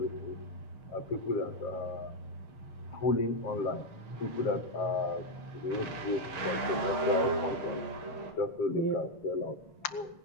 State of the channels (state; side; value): late; right; 7.4 ms